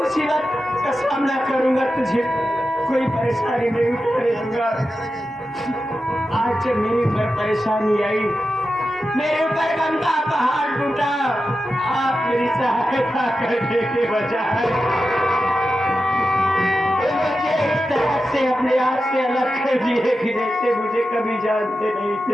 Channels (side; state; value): both; normal; correlation 0.91